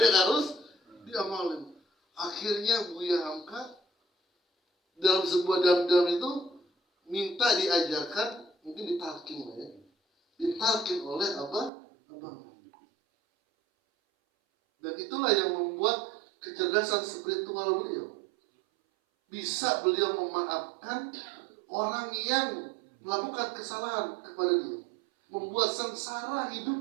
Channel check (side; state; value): left; drops out; at 11.7 s